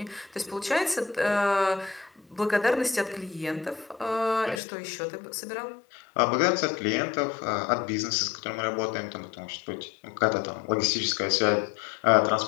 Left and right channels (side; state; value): right; drops out; at 4.6 s